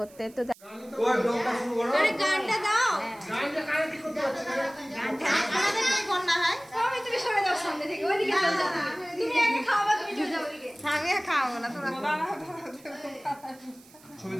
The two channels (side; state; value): right; noise; hiss, 25 dB below the sound